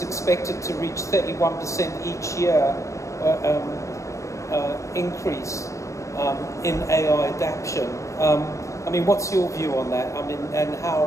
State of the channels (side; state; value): right; late; 0.15 ms